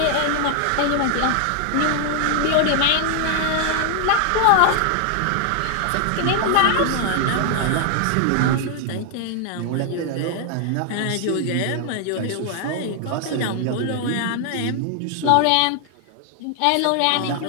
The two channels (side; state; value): both; different; correlation 0.00